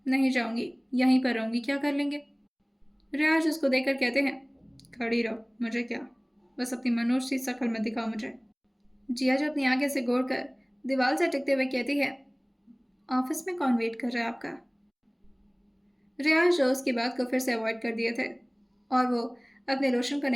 नहीं जाऊंगी, यहीं पर रहूंगी, क्या कर लेंगे। रियाज उसको देखकर कहते हैं, खड़ी रहो, मुझे क्या, बस अपनी मनोज सी शक्ल में दिखाओ मुझे। जिया जो अपनी आंखें से गोड़कर दीवार से टिकते हुए कहती है, ऑफिस में कौन वेट कर रहा है आपका। रियाज जो उसकी बात को फिर से अवॉइड कर दिए थे और वो अपने लोशन को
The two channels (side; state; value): both; identical; correlation 1.00